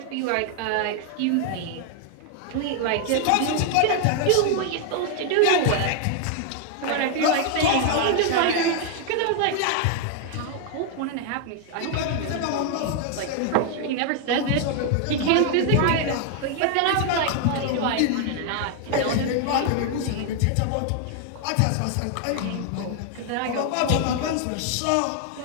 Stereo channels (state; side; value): different; both; correlation 0.00